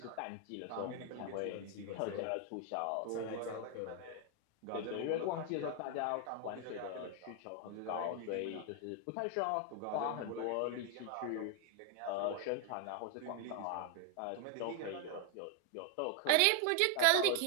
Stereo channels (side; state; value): both; different; correlation 0.01